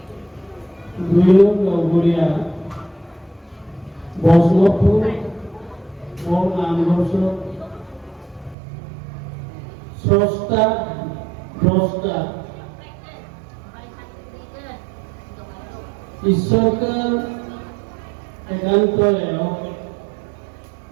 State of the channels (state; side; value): drops out; left; at 8.6 s